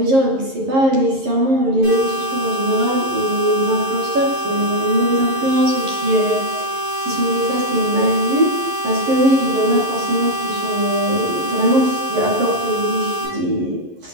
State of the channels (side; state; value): left; late; 11 ms